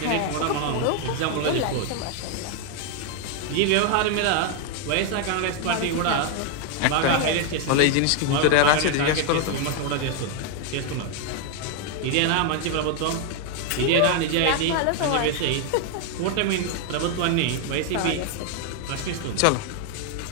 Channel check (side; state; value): both; different; correlation 0.01